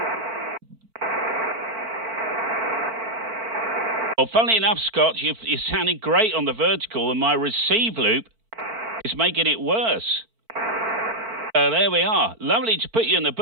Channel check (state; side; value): late; left; 4.5 ms